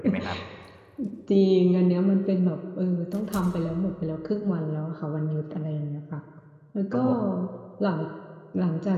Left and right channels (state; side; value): identical; both; correlation 1.00